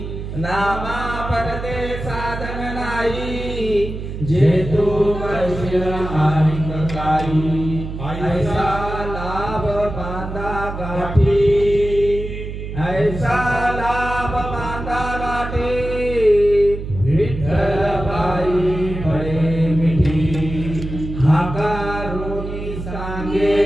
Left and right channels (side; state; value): right; noise; hum, 8 dB below the sound